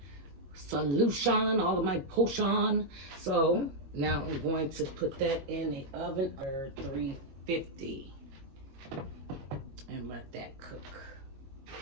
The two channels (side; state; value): left; late; 21 ms